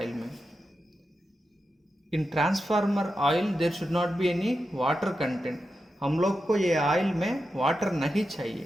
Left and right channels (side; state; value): both; normal; correlation 0.89